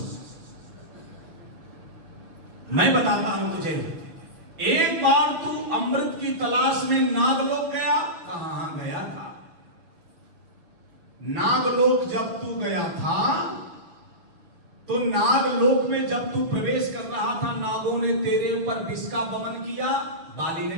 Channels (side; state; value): left; late; 6.3 ms